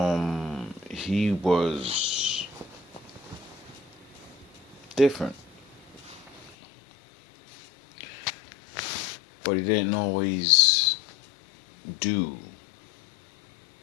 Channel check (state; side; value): drops out; right; at 6.6 s